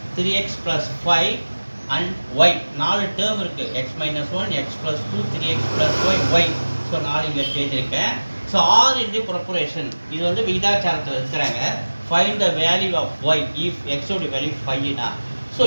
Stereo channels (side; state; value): both; inverted; correlation -1.00